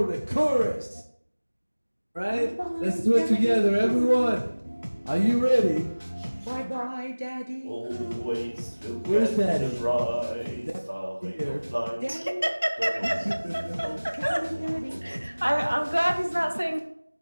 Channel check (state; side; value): inverted; both; correlation -1.00